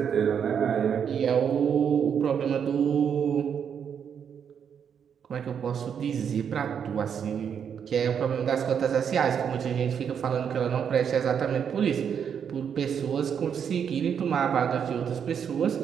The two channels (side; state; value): left; quieter; 7.7 dB